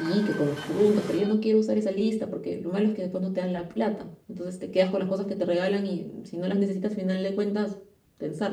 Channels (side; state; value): both; identical; correlation 1.00